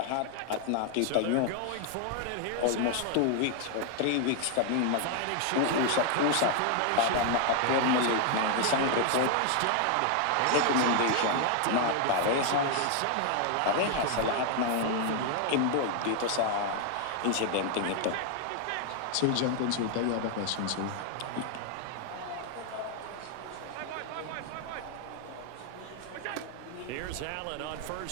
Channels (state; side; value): different; both; correlation 0.00